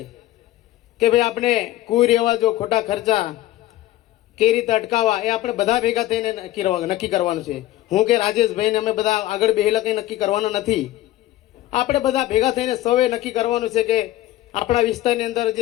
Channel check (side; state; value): right; quieter; 15.2 dB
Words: કે ભાઈ આપણે કુરિવાજો ખોટા ખર્ચા કઈ રીતે અટકાવવા એ આપણે બધા ભેગા થઈને નક્કી કરવાનું છે હું કે રાજેશભાઈને અમે બધા આગળ બેહેલા કંઈ નક્કી કરવાનું નથી આપણે બધા ભેગા થઈને સૌએ નક્કી કરવાનું છે કે આપણા વિસ્તારની અંદર